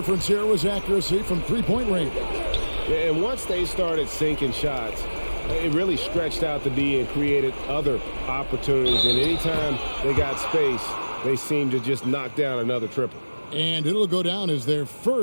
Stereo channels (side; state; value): both; inverted; correlation -1.00